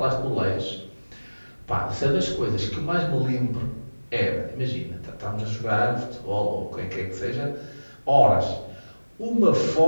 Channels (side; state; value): both; inverted; correlation -1.00